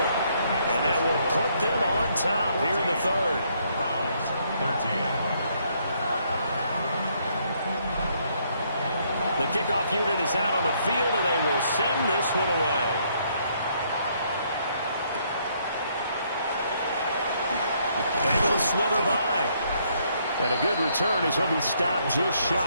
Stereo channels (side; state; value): both; inverted; correlation -0.70